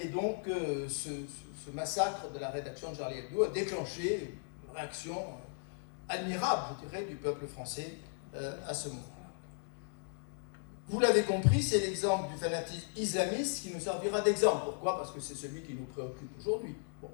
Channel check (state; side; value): silent; right; digital silence